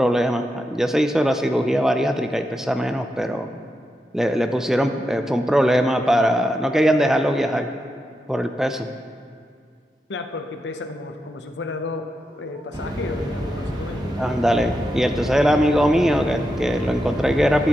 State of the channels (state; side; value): normal; both; correlation 0.86